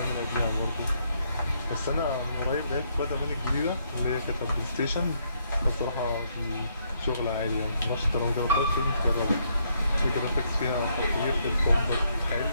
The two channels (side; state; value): both; inverted; correlation -0.73